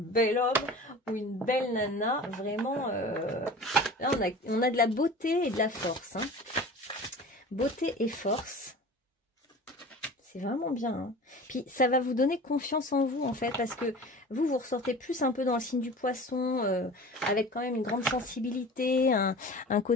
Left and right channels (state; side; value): normal; both; correlation 0.38